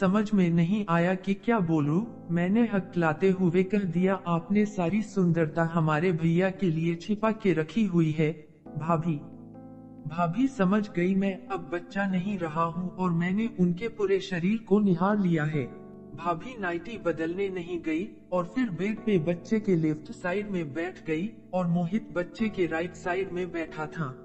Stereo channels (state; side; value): identical; both; correlation 1.00